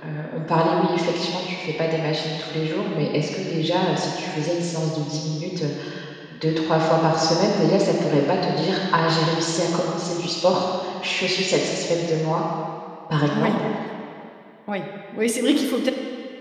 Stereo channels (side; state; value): both; identical; correlation 1.00